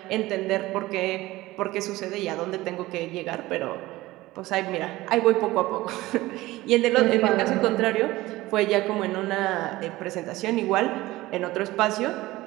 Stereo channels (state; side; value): quieter; left; 18.2 dB